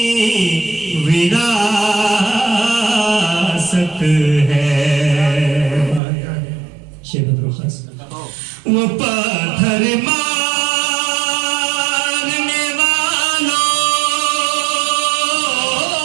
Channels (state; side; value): drops out; left; at 6.0 s